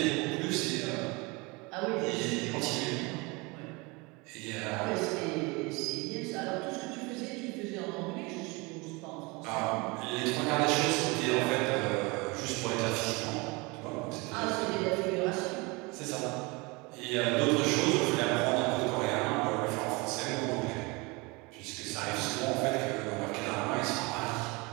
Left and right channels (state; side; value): quieter; left; 26.4 dB